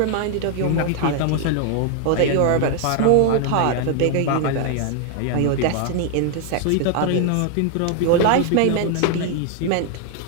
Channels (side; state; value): both; different; correlation 0.00